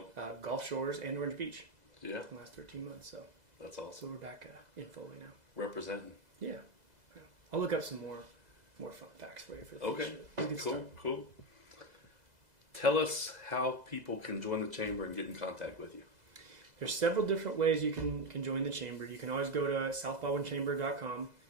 Gulf Shores, and Orange Beach Yeah. in the last 13 months. So That's awesome. we're back in Foley now. Representing. Yeah. I'll look up some more fun facts for you for the Okay. future. It's a good Cool. start. Cool. Tell us how people can join the chamber and get in contact with you. There's several different ways you can join the chamber. You can always go to southbaldwinchamber.com.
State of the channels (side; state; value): left; late; 2.0 ms